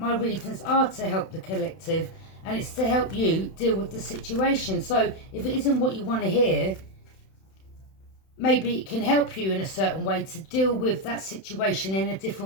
reasons are to help the collective, and it's to help you deal with the situation. So if it isn't what you want to hear, maybe it can help you in a certain way to deal with that situation in a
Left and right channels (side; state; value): right; late; 31 ms